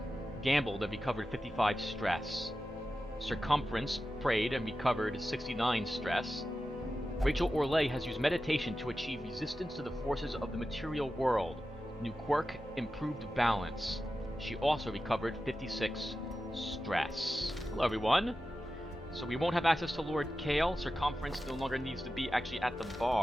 gambled and recovered 55 stress. Circumference prayed and recovered 69 stress. Rachel Orlay has used meditation to achieve resistance to the forces of the material world. New quirk, improved balance. She also recovered 56 stress. Hello everyone! So we won't have access to Lord Kale. Circumference no longer needs to be actually at the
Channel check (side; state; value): both; normal; correlation 0.92